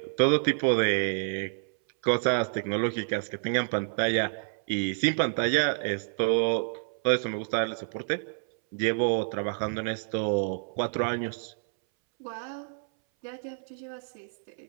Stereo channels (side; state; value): left; silent; 59 dB below the other